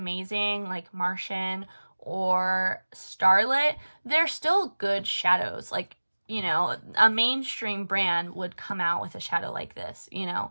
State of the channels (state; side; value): inverted; both; correlation -1.00